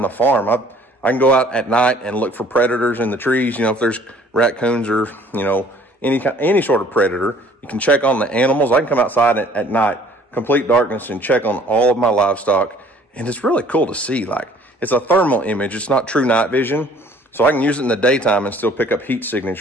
the farm. I can go out at night and look for predators in the trees. You know, if there's raccoons or, you know, any sort of predator, you can check on the animals. I can come outside at night, complete darkness, and check on all of my livestock. And it's really cool to see. Like, it's a thermal image. It's not true night vision. So I can use it in the daytime and still pick up heat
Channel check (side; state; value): both; normal; correlation 0.55